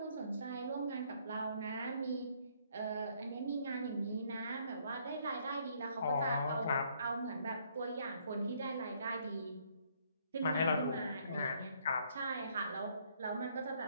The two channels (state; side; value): inverted; both; correlation -0.66